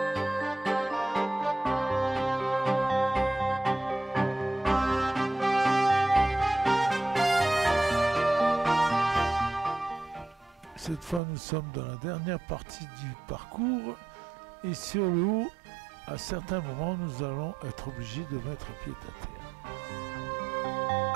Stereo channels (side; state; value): left; drops out; at 11.2 s